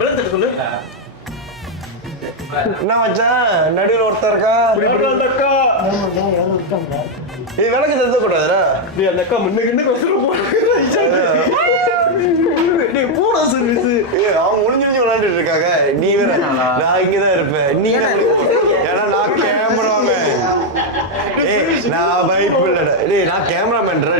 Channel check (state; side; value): normal; both; correlation 0.01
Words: சொல்லு. என்ன மச்சான் நடுவில் ஒருத்தர் இருக்கா? அந்த அக்கா இது விளக்கு தந்த கூடாதுடா. நீ அந்த அக்கா முன்னுக்கு போடா சர்வீஸ். அவங்க முடிஞ்சு விளையாண்டுட்டு இருக்காங்க. நீ வேற நான் இங்கதான் இருப்பேன். நீ ஏன்னா நான் கேமராமேன். நான் பைப் இல்லடா. டேய் நான் கேமராமேன்டா.